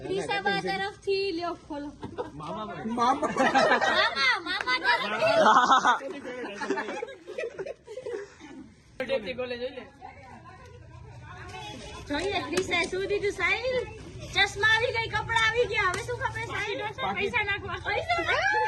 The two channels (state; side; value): identical; both; correlation 1.00